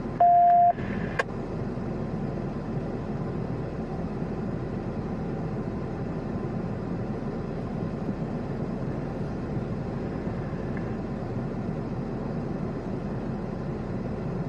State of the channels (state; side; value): identical; both; correlation 1.00